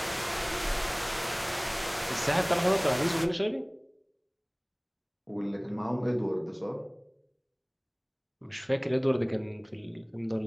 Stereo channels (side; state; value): both; identical; correlation 1.00